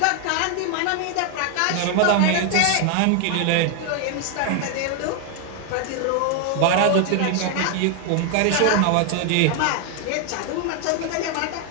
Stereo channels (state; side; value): different; both; correlation 0.01